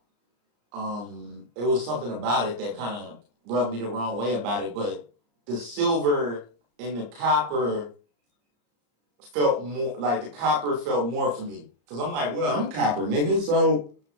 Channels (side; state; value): left; late; 34 ms